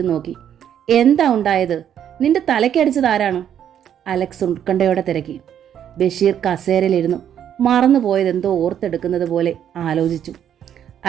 നോക്കി. എന്താ ഉണ്ടായത്? നിന്റെ തലയ്ക്കടിച്ചത് ആരാണ്? അലക്സ് ഉത്കണ്ഠയോടെ തിരക്കി. ബഷീർ കസേരയിലിരുന്നു മറന്നുപോയതെന്തോ ഓർത്തെടുക്കുന്നത് പോലെ ആലോചിച്ചു.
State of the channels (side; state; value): left; quieter; 9.6 dB